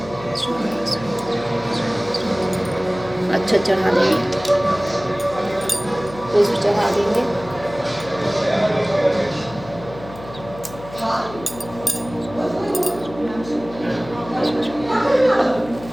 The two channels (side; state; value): left; noise; hum, 16 dB below the sound